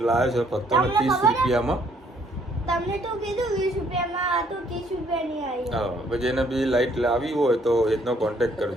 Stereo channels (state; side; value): normal; both; correlation 0.65